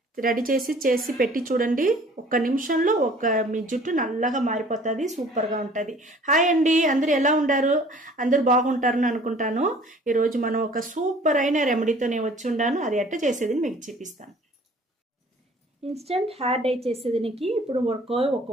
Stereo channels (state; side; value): normal; both; correlation 0.52